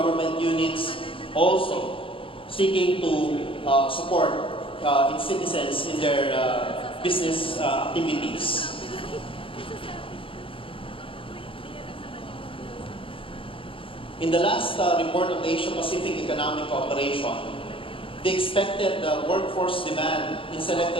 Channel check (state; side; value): late; right; 0.26 ms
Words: units, also seeking to support its citizens in their business activities. In the last report of the Asia-Pacific Economic Cooperation, the expected workforce demand in